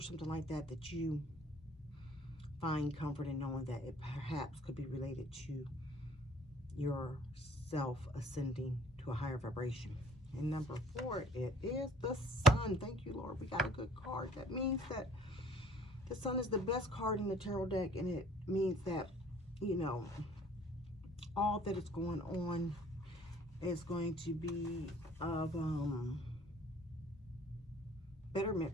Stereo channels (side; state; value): both; normal; correlation 0.55